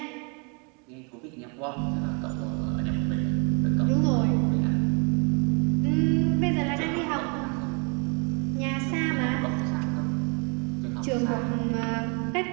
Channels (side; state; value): left; quieter; 35.0 dB